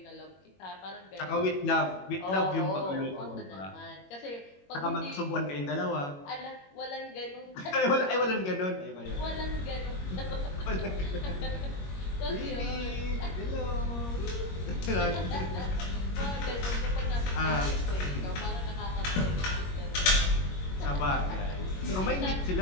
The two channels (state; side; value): late; right; 21 ms